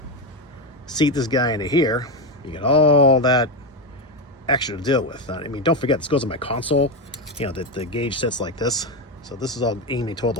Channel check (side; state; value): both; normal; correlation 0.11